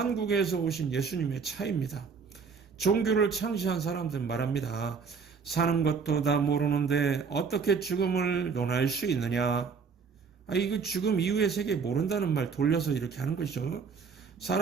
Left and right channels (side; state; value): left; quieter; 5.6 dB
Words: 오신 예수님의 차이입니다. 종교를 창시한 사람들 말합니다. 사는 것도 다 모르는데 어떻게 죽음을 논할 수 있느냐. 이거 죽음 이후의 세계 모른다는 말 돌려서 이렇게 하는 것이죠.